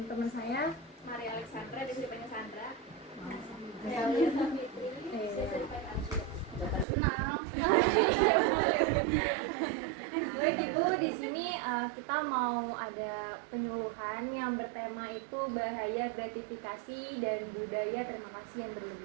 teman saya Maria Alexandra, dia dipanggil Sandra. Saya Fitri, saya dipanggil Arsya. Kenal. Baik Ibu, di sini kita mau ada penyuluhan yang bertema itu bahaya gratifikasi dan budaya terima kasih yang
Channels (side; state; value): left; drops out; at 6.9 s